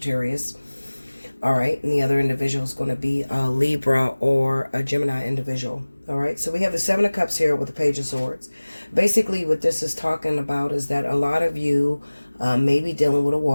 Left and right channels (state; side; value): inverted; both; correlation -1.00